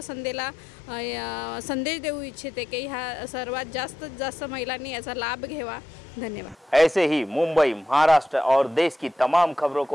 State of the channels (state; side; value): normal; both; correlation 0.86